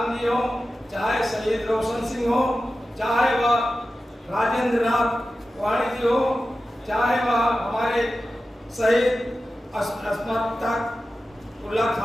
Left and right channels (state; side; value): normal; both; correlation 0.93